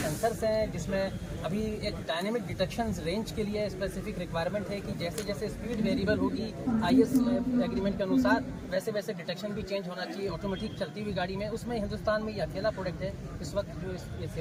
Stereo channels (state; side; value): identical; both; correlation 1.00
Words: हैं, जिसमें अभी एक डायनेमिक डिटेक्शन रेंज के लिए स्पेसिफिक रिक्वायरमेंट है कि जैसे जैसे स्पीड वेरिएबल होगी IS एग्रीमेंट के अनुसार, वैसे वैसे डिटेक्शन भी चेंज होना चाहिए ऑटोमेटिक चलती हुई गाड़ी में. उसमें हिंदुस्तान में ये अकेला प्रोडक्ट है इस वक्त जो ये